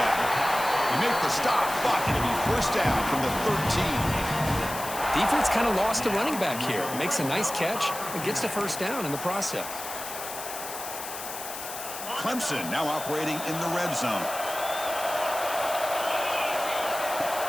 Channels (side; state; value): left; noise; hiss, 9 dB below the sound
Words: back. They make the stop, but it'll be first down from the 13. Defense kind of lost a running back here. Makes a nice catch and gets the first down in the process. Clemson now operating in the red zone.